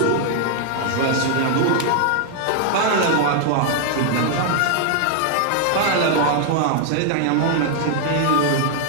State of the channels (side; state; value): both; different; correlation 0.00